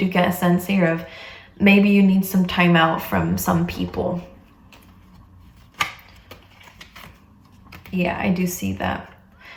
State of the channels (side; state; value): both; identical; correlation 1.00